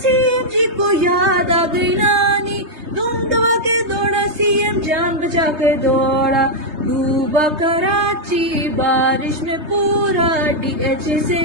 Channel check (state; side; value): late; left; 3.2 ms